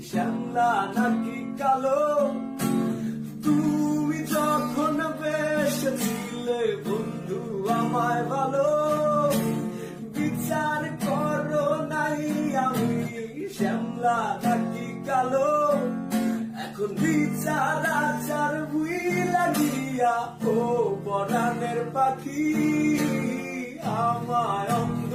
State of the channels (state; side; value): identical; both; correlation 1.00